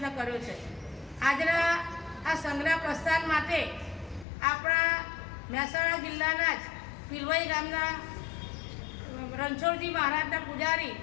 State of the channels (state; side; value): drops out; right; at 4.2 s